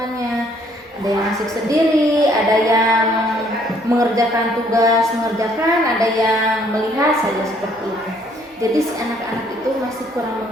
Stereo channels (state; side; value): normal; both; correlation 0.64